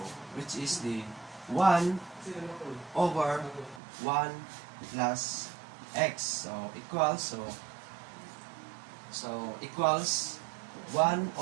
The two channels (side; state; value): left; drops out; at 3.8 s